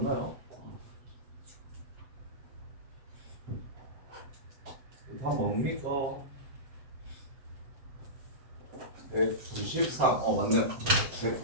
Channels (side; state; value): left; late; 7.5 ms